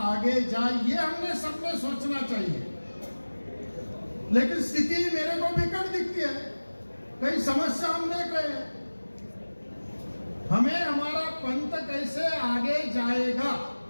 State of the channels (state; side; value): inverted; both; correlation -1.00